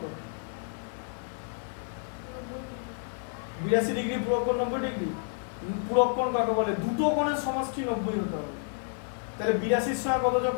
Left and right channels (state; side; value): silent; right; 58 dB below the other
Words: 82 ডিগ্রি পূরক কোণ 90 ডিগ্রি। পূরক কোণ কাকে বলে? দুটো কোণের সমষ্টি 90 হতে হবে। তাহলে 82 এর সঙ্গে কত যোগ